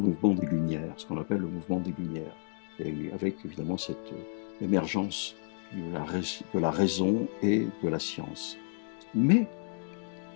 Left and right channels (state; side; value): silent; right; 57 dB below the other